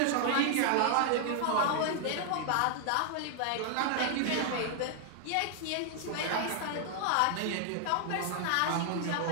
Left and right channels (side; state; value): both; different; correlation 0.00